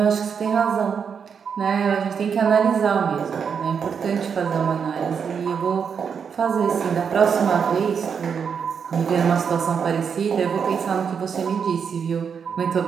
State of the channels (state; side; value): quieter; left; 6.7 dB